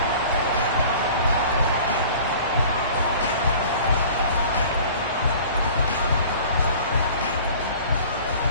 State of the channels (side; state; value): both; inverted; correlation -0.45